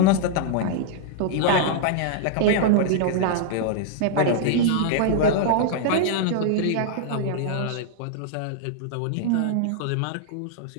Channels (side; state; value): both; different; correlation -0.01